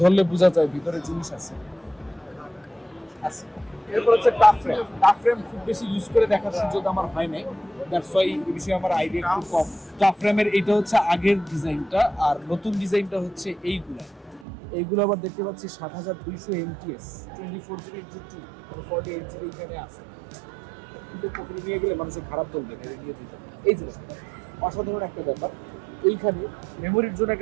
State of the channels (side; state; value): left; drops out; at 14.5 s